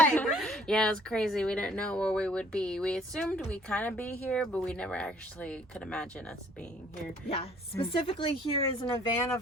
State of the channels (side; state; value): both; normal; correlation 0.59